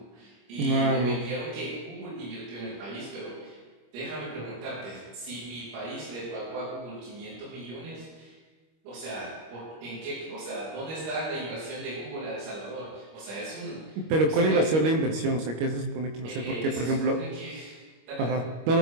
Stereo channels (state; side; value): late; left; 25 ms